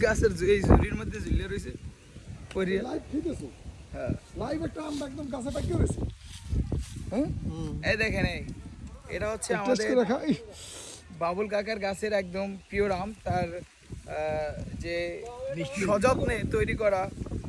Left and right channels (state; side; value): identical; both; correlation 1.00